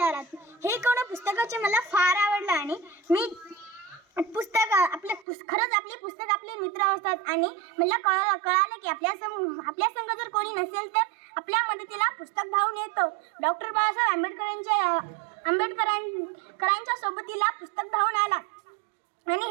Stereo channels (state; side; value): drops out; left; at 5.2 s